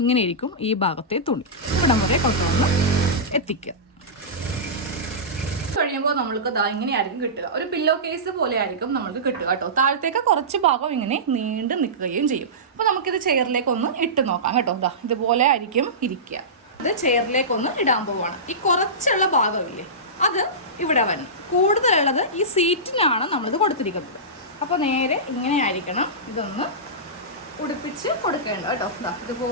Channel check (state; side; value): normal; both; correlation -0.18